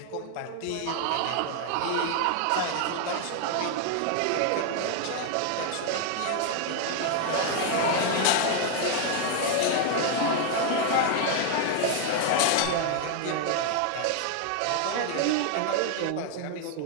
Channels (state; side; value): different; both; correlation 0.00